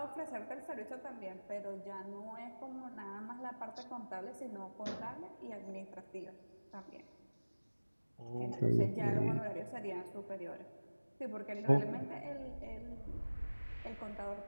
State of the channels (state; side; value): inverted; both; correlation -1.00